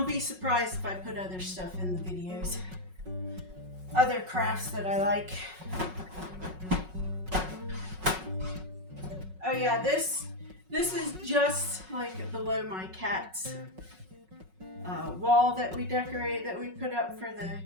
be surprised if I put other stuff in the videos. Other crafts that I like. Oh yeah, this is just like below my cat's wall that we decorate, that we put up for the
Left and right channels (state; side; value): late; left; 5.4 ms